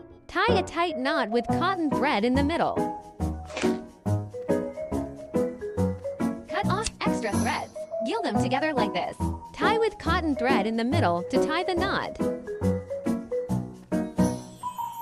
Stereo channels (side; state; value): both; identical; correlation 1.00